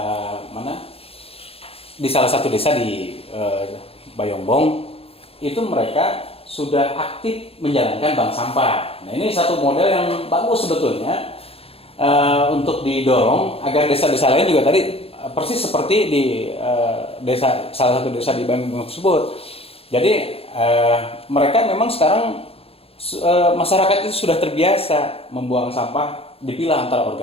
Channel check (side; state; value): right; late; 0.28 ms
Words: mana? Di salah satu desa di Bayongbong, itu mereka sudah aktif menjalankan bank sampah. Nah, ini satu model yang bagus sebetulnya untuk didorong agar desa-desa lain juga tadi persis seperti di salah satu desa di Bandung tersebut. Jadi mereka memang sekarang masyarakat itu sudah terbiasa membuang sampah, dipilah antara